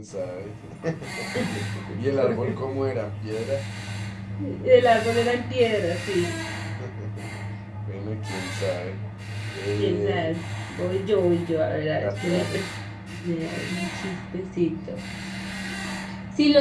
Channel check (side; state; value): both; identical; correlation 1.00